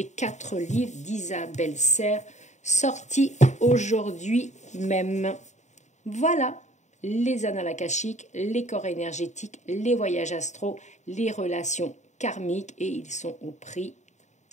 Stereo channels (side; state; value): right; late; 0.34 ms